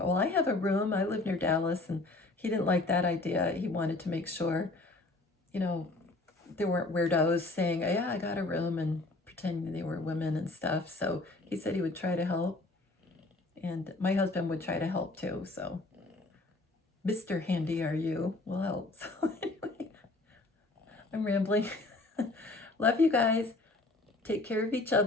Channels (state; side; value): quieter; right; 3.0 dB